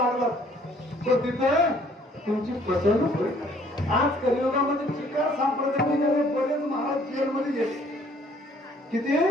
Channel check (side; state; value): both; normal; correlation 0.60